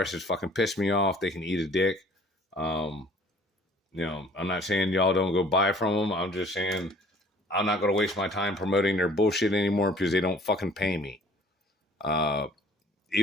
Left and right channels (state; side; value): normal; both; correlation 0.53